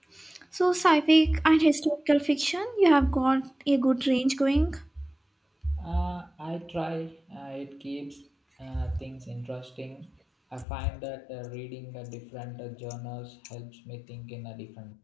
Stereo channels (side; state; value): right; drops out; at 10.7 s